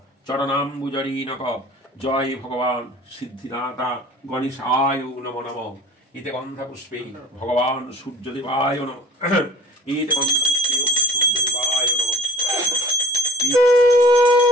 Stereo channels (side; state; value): both; normal; correlation 0.45